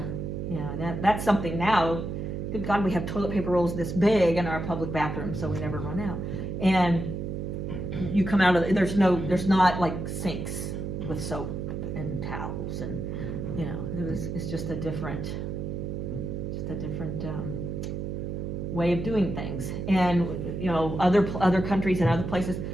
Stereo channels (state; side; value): noise; right; hum, 4 dB below the sound